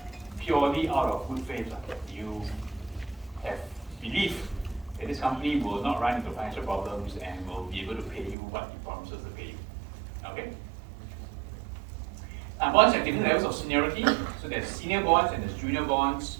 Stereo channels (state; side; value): drops out; left; at 8.3 s